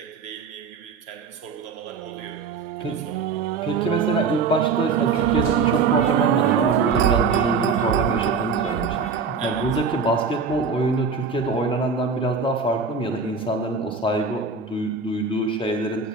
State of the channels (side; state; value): left; quieter; 5.0 dB